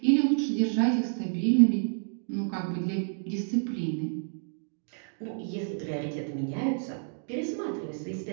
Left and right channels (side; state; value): left; silent; 58 dB below the other